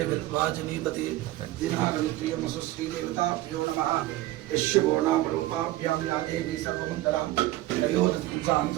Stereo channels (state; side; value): quieter; left; 16.6 dB